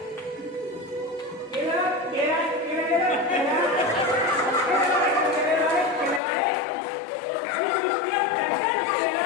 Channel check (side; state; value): right; drops out; at 6.2 s